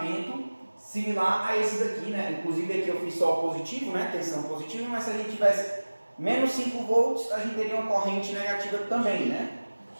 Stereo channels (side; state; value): both; inverted; correlation -1.00